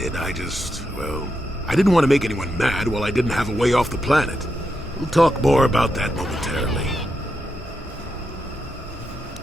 I didn't want to make anyone mad while I didn't have a way off the planet. We'll talk more about that momentarily.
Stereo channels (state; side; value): normal; both; correlation 0.84